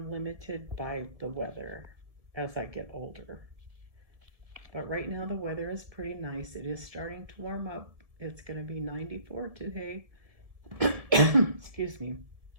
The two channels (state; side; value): late; left; 1.7 ms